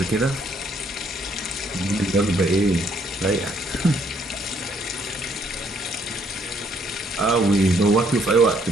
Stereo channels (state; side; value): normal; both; correlation 0.68